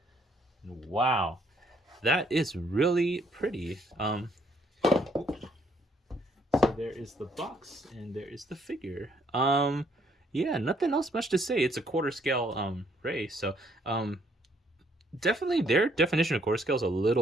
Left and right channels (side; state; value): both; normal; correlation 0.68